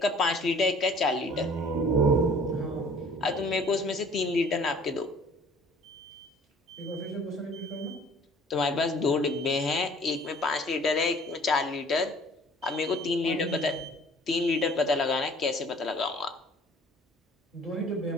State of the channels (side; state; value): both; normal; correlation 0.53